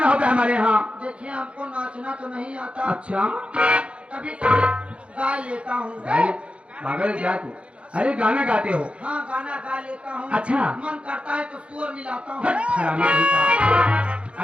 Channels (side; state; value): left; late; 0.060 ms